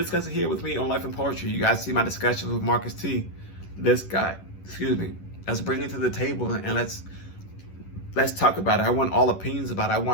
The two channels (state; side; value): late; right; 11 ms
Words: discuss it here with me on Life and Poetry, you guys see my discussions with Marcus T. This guy, let's bring it to the table and let's talk about it. I want all opinions about it.